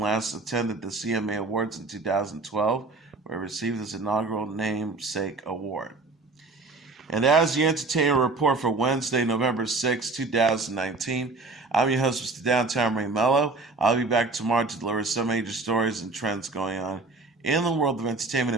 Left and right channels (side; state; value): left; quieter; 3.6 dB